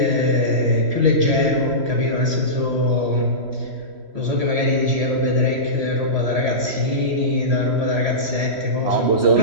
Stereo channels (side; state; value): left; late; 3.1 ms